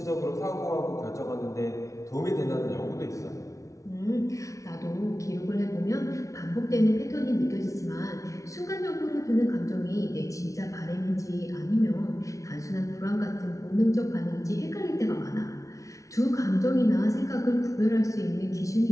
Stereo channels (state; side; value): late; right; 0.15 ms